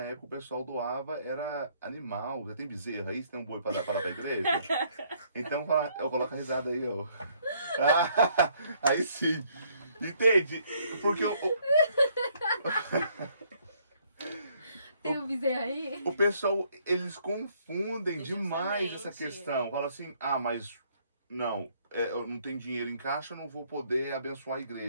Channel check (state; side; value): inverted; both; correlation -0.66